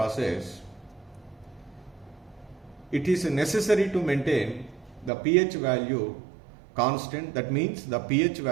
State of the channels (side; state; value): left; drops out; at 5.1 s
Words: It is necessary to maintain the pH value constant. That means the pH